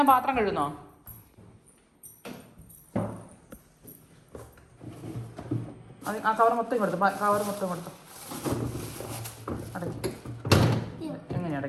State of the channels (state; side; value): identical; both; correlation 1.00